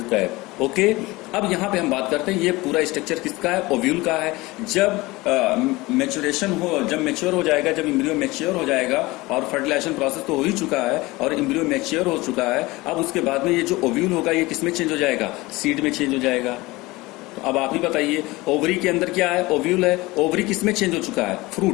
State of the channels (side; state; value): right; quieter; 21.3 dB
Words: cap, okay. अब यहां पे हम बात करते हैं, ये पूरा स्ट्रक्चर किसका है? ओव्यूल का है। जब मैच्योरेशन हो, जब मैच्योर हो जाएगा, जब एम्ब्रियो मैच्योर हो जाएगा, और फर्टिलाइजेशन प्रोसेस तो हो ही चुका है और एम्ब्रियो मैच्योर हो चुका है, अब उसके बाद में ये जो ओव्यूल होगा ये किसमें चेंज हो जाएगा? सीड में चेंज हो जाएगा। तो अब आप ही बताइए, ओवरी के अंदर क्या है? ओव्यूल है। ओवरी किसमें चेंज हो चुका है?